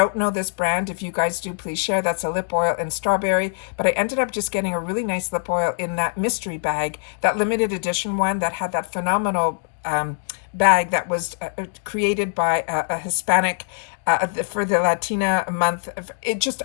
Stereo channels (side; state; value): right; silent; digital silence